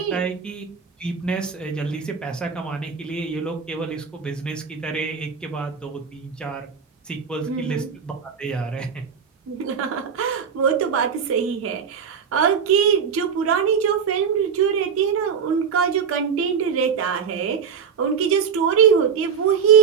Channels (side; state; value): left; quieter; 6.7 dB